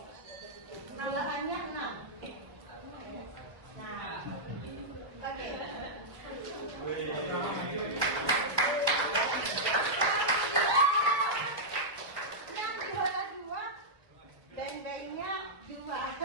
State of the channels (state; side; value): late; left; 1.3 ms